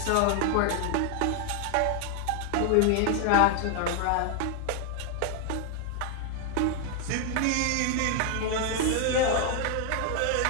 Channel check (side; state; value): both; different; correlation 0.01